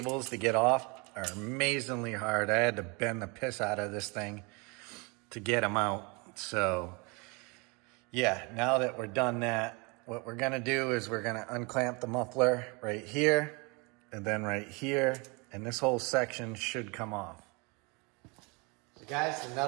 to get off are amazingly hard. I had to bend the piss out of this thing to get them out. So yeah, now that we're done that, what we're gonna do is we're gonna unclamp the muffler right here and then right here, and this whole section should come off. So guys, the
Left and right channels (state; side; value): quieter; left; 29.5 dB